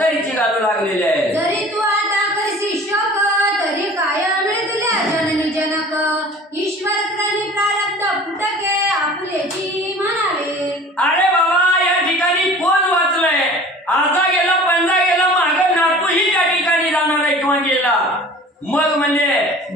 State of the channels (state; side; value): normal; both; correlation 0.44